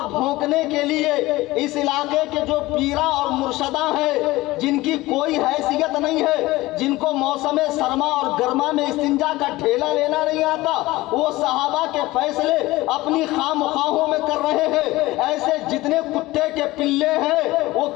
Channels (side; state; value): right; quieter; 18.9 dB